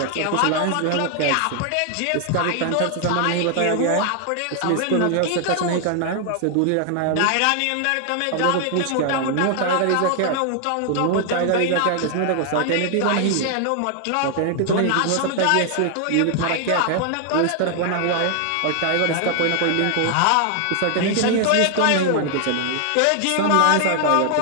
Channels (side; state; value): both; different; correlation 0.00